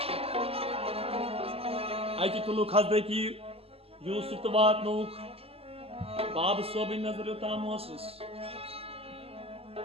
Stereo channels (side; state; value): left; late; 0.29 ms